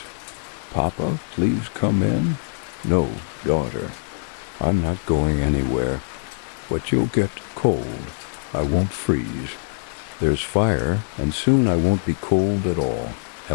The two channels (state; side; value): silent; right; digital silence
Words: Papa, please come in. No, daughter, I'm not going anywhere. But you'll get cold. I won't freeze. There's fire, and soon I won't be cold at all.